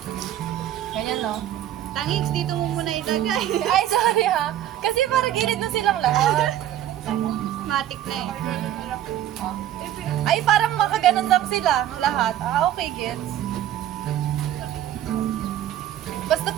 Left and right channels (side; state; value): left; quieter; 12.1 dB